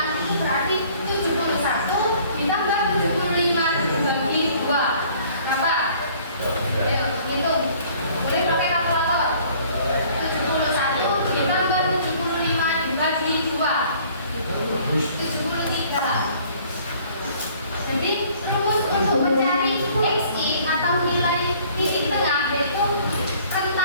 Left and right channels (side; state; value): both; inverted; correlation -0.56